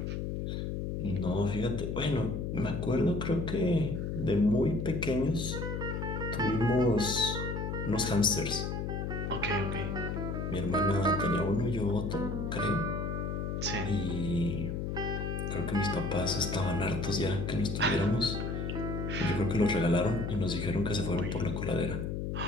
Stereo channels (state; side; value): noise; left; hum, 2 dB below the sound